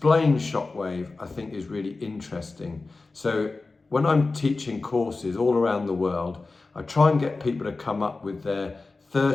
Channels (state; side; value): quieter; right; 3.6 dB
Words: shockwave, I think, is really interesting. So when I'm teaching courses all around the world, I try and get people to come up with their